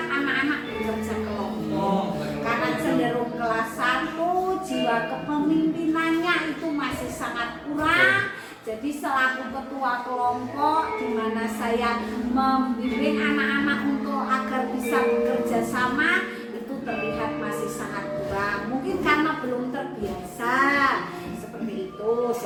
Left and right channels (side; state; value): both; identical; correlation 1.00